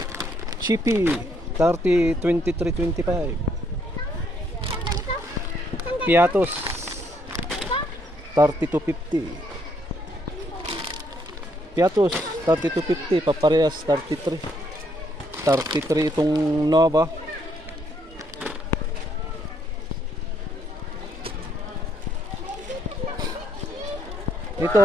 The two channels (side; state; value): both; normal; correlation 0.71